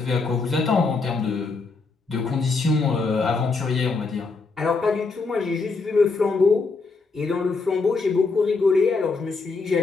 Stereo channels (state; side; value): quieter; right; 4.1 dB